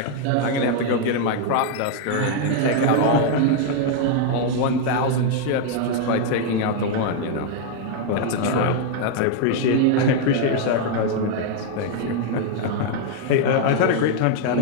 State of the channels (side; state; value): both; different; correlation 0.00